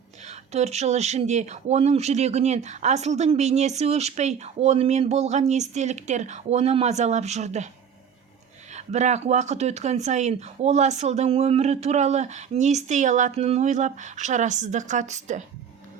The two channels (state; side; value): quieter; left; 7.5 dB